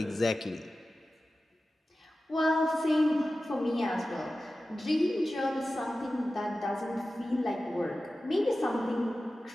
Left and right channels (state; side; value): normal; both; correlation 0.95